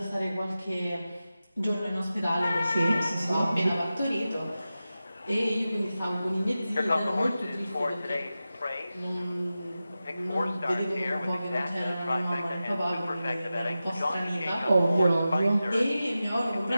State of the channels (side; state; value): both; inverted; correlation -0.94